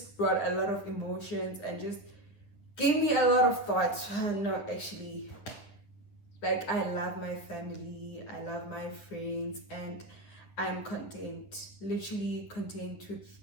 brought a lot of emotions and just gave me a lot of thoughts. No, actually, like, I love my family, I love my friends, and I'm content, literally content with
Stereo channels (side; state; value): right; late; 10 ms